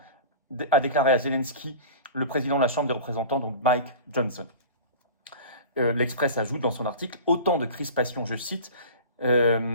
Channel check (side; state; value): both; inverted; correlation -0.36